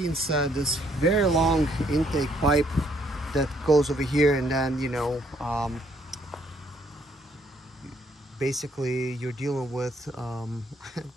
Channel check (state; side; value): normal; both; correlation 0.68